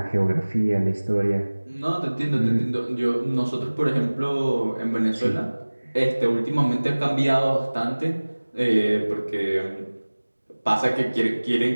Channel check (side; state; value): both; inverted; correlation -1.00